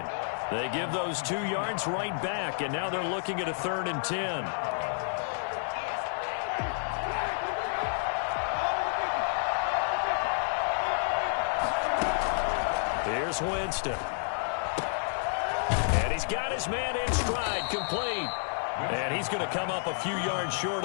They give those 2 yards right back, and now they're looking at a 3rd and 10. Here's Winston. And he's got his man in stride, complete. And he's going to come up a few yards short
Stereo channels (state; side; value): silent; right; 58 dB below the other